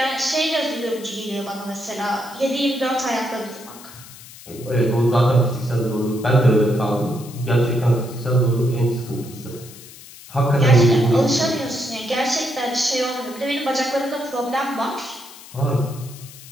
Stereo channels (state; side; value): noise; left; hiss, 18 dB below the sound